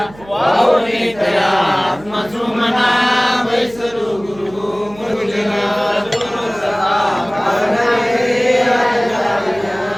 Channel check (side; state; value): right; noise; hum, 21 dB below the sound